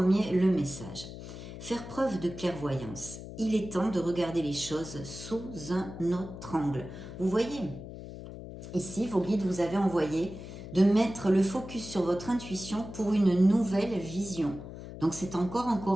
le message. Faire preuve de clairvoyance. Il est temps de regarder les choses sous un autre angle. Vous voyez, ici, vos guides vous avaient envoyé de mettre le focus sur votre intuition pour une nouvelle vision. Donc c'est encore en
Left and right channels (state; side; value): noise; left; hum, 12 dB below the sound